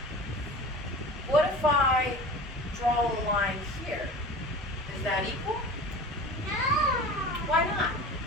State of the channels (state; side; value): normal; both; correlation 0.37